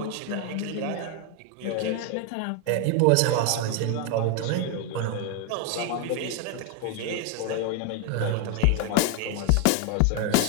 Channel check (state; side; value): different; both; correlation 0.01